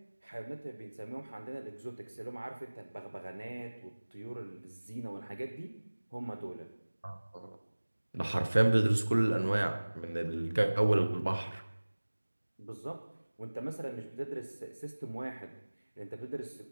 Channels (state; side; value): inverted; both; correlation -1.00